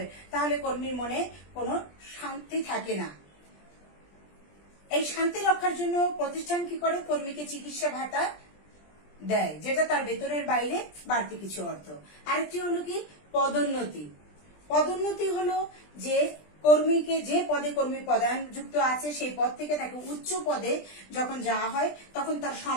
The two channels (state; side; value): late; right; 20 ms